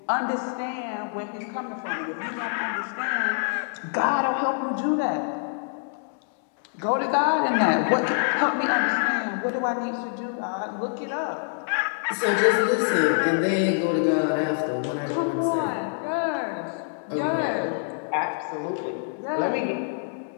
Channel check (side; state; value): right; silent; digital silence